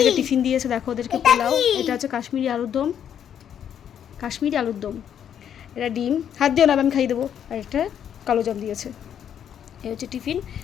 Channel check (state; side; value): quieter; right; 9.1 dB